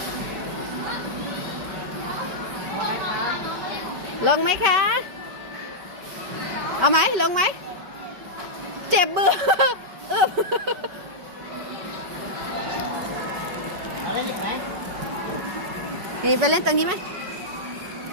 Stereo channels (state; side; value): late; left; 5.2 ms